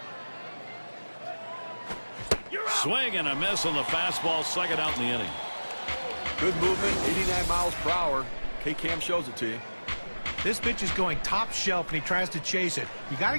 Swing and a miss on the fastball, second out in the inning. Good movement, 89 miles per hour. K-Cam shows it to you. This pitch is going top shelf, and he tries to chase it. You got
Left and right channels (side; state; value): both; inverted; correlation -1.00